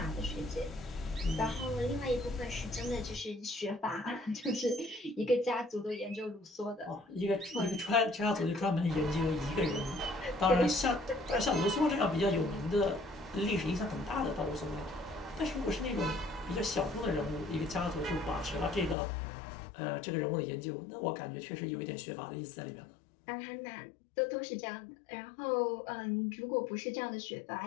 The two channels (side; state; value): right; drops out; at 18.9 s